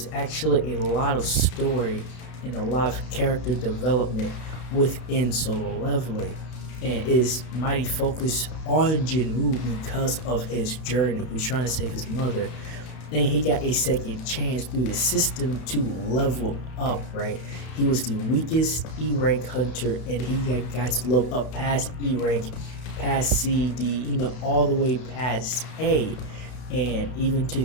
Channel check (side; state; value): right; late; 32 ms